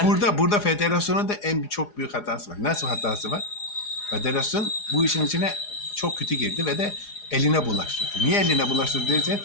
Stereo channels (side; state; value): right; late; 4.8 ms